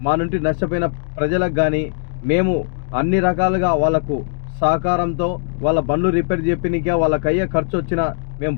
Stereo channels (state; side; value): silent; right; digital silence